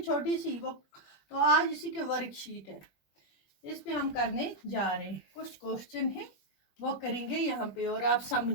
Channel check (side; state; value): right; late; 21 ms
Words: सी वो। तो आज इसी के वर्कशीट है, इस पे हम करने जा रहे हैं। कुछ क्वेश्चन है वो करेंगे यहाँ पे और आप